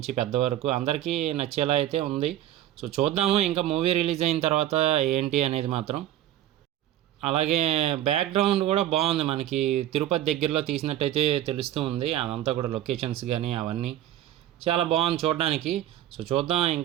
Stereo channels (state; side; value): quieter; left; 12.7 dB